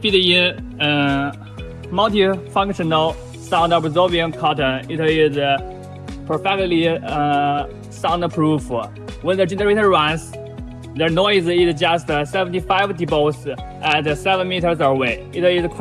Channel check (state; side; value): identical; both; correlation 1.00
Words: in multi-functional sound absorbing cotton, it is perfectly soundproof. When the generator runs, the noise is just 75 decibels at 7 meters away. It is